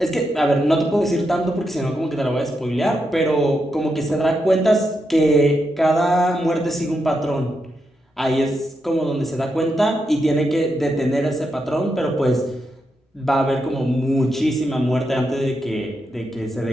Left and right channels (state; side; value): normal; both; correlation 0.84